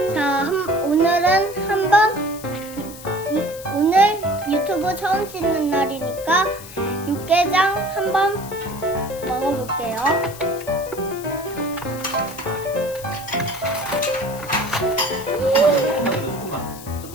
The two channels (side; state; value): left; noise; hiss, 16 dB below the sound